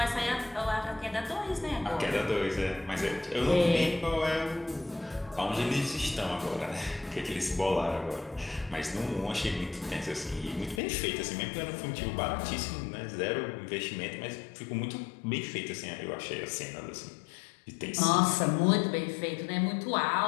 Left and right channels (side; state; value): right; drops out; at 10.8 s